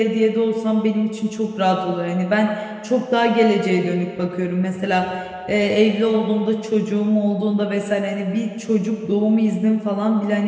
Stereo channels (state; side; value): identical; both; correlation 1.00